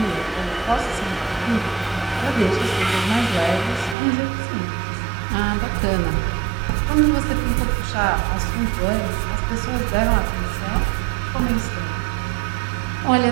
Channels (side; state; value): left; drops out; at 4.0 s